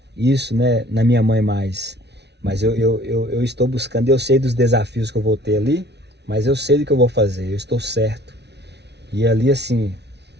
isso, né, na minha mãe mais. Mas eu estou buscando, eu sei dos desafios que eu vou ter ali, mas eu sei do que eu vou fazer, eu estou certo. E ali assim,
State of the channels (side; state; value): left; late; 0.50 ms